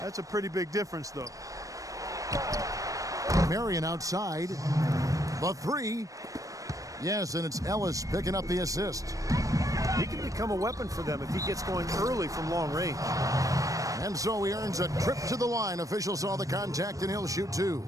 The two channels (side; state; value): left; late; 0.16 ms